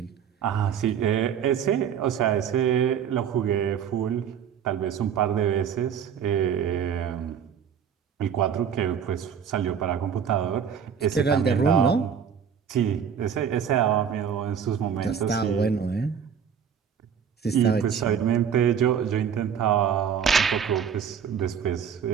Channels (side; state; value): left; quieter; 7.8 dB